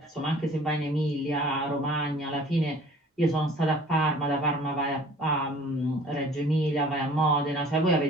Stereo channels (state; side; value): normal; both; correlation 0.50